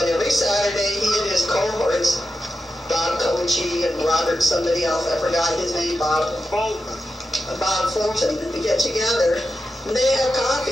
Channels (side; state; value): both; normal; correlation 0.90